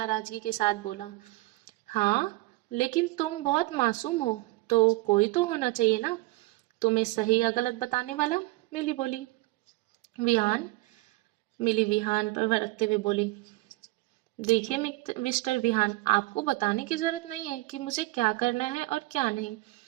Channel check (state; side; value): quieter; left; 20.9 dB